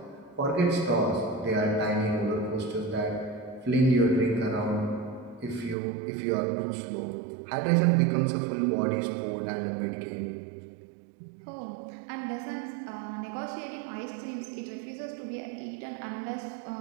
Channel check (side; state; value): left; drops out; at 5.8 s